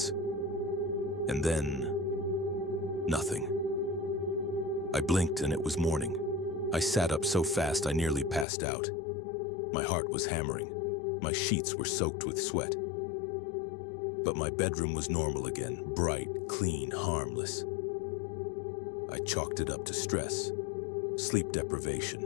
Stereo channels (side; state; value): right; drops out; at 8.5 s